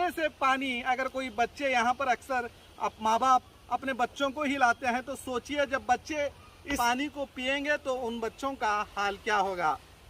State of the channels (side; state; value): both; identical; correlation 1.00